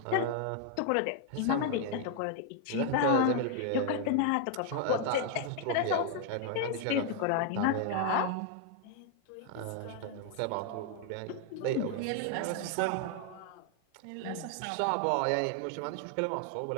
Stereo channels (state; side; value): different; both; correlation 0.00